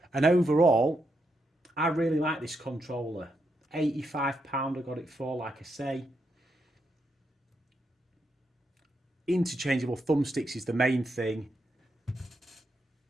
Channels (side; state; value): both; normal; correlation 0.82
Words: And overall, I really like this controller. £85 I got it for, like I say. Interchangeable thumbsticks is the main thing.